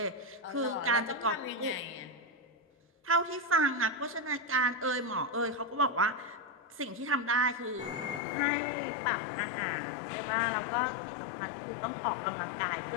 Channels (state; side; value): drops out; right; at 8.2 s